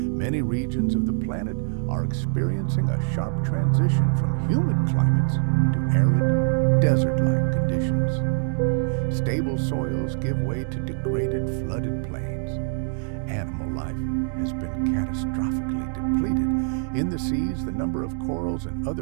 regions of the planet are experiencing a sharp transition from humid climates to arid, desert-like conditions. Stable soils give way to degraded, flooded plains. Animal life has been catastrophically depleted. In the seas, the number of corals and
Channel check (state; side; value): silent; left; digital silence